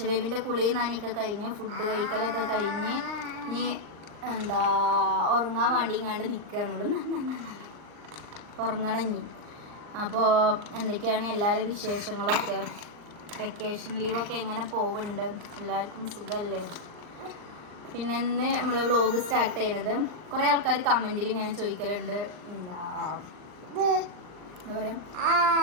ബേബിൻ്റെ കുളിയും നനയൊക്കെ കഴിഞ്ഞ് ഫുഡ് കഴിക്കലൊക്കെ കഴിഞ്ഞ് ഇനി ഉറങ്ങാൻ വേണ്ടി ഇങ്ങാണ്ട് നിൽക്കുകയാണുള്ളൂ. ഉറങ്ങണം ഇനി. അപ്പോൾ എന്തൊക്കെയാണ് എല്ലാവരും വിശേഷങ്ങളൊക്കെ? വെക്കേഷൻ ലീവൊക്കെ എങ്ങനെ പോകുന്നുണ്ട്? എല്ലാവർക്കും സുഖമല്ലേ? പിന്നെ ഇന്ന് നമ്മൾ വ്ളോഗ് സ്റ്റാർട്ട് ചെയ്യണത്, കുറേ ആൾക്കാർ കമൻറ്റിൽ ഇങ്ങനെ ചോദിക്കലുണ്ട്, എന്താ പറയുക,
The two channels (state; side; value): late; left; 39 ms